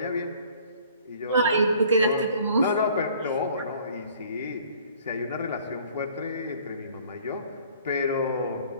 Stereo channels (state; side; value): inverted; both; correlation -0.54